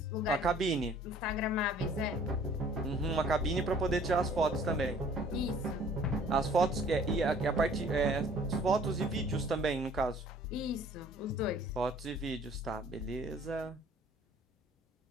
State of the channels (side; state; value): both; normal; correlation 0.54